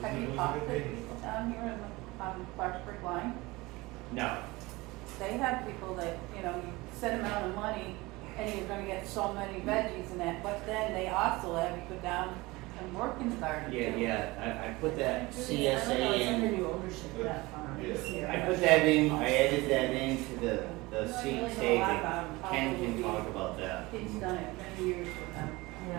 Have you talked to people down here in the, Clarksburg line? No. They have people that, you know, you set amount of money and you're gonna get so many veggies and that, but then they also have you go down and work in the garden too. Yeah, I put that I don't know, CSA it's under in. new ownership of that farm. Yeah. I put that in, I added that into the I don't seat really know a lot saving. about 'em. Ken can Probably talk about that He's done it many years with them.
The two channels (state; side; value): quieter; left; 21.9 dB